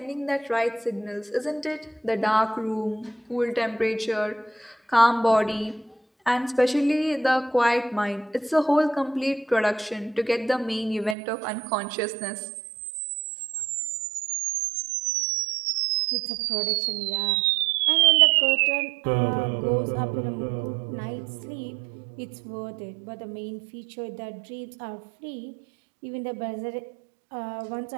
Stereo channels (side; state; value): left; drops out; at 11.2 s